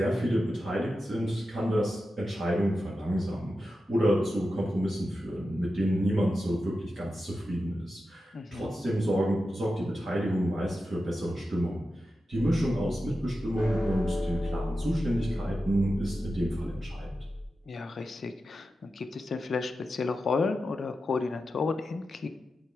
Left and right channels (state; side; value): normal; both; correlation 0.91